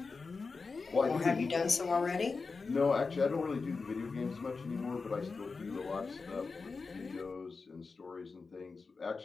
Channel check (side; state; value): right; quieter; 4.4 dB